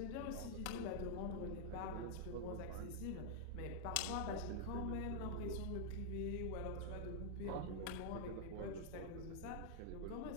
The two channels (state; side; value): different; both; correlation -0.01